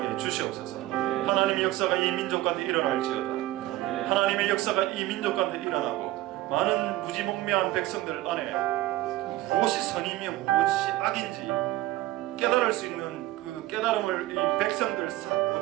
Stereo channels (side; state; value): left; quieter; 16.4 dB